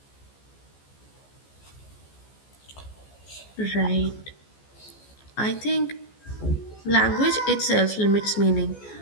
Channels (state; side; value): late; right; 14 ms